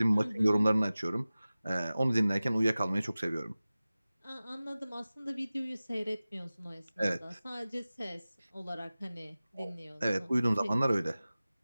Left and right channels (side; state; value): both; inverted; correlation -0.97